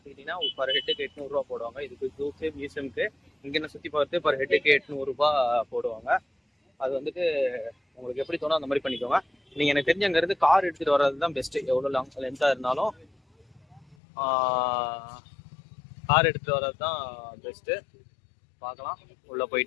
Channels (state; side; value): drops out; right; at 14.0 s